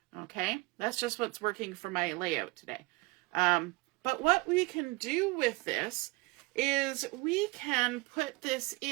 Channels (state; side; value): quieter; left; 24.2 dB